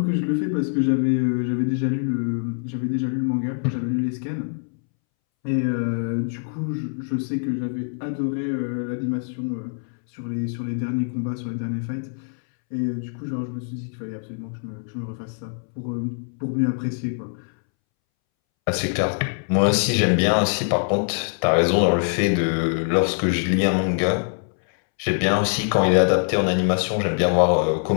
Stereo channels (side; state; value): right; silent; 63 dB below the other